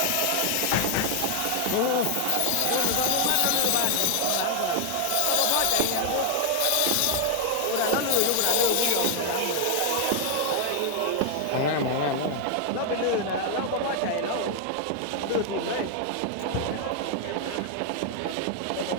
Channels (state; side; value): different; both; correlation 0.00